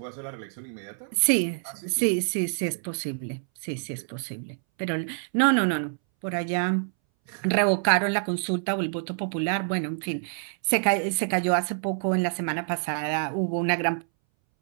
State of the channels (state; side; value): silent; left; 60 dB below the other